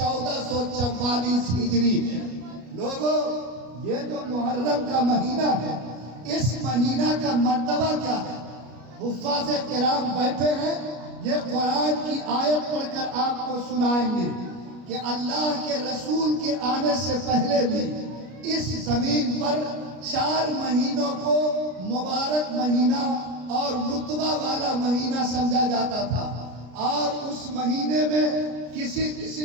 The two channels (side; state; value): left; late; 33 ms